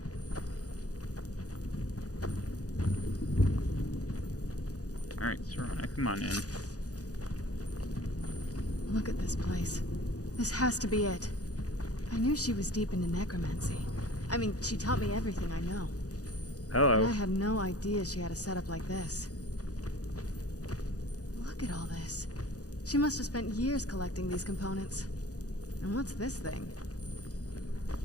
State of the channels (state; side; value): late; right; 0.67 ms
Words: Alright, Serana, come on in. Look at this place. This has to be it. I knew she was deep into necromancy. I mean, she taught me everything I know. Hello. But I had no idea she had a setup like this. Look at all this. She must have spent years collecting these components. And what's this thing?